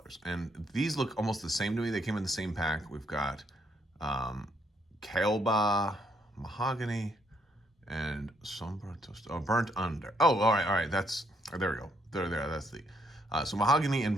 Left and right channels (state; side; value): normal; both; correlation 0.72